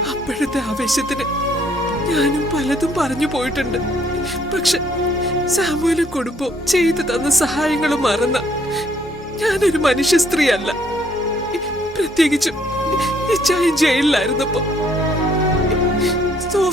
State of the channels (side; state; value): both; normal; correlation 0.66